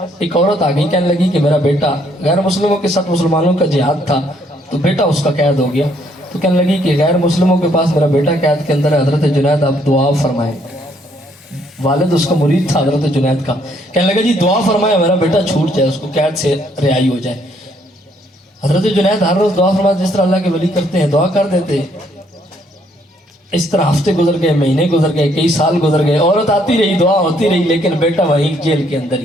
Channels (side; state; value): both; normal; correlation 0.68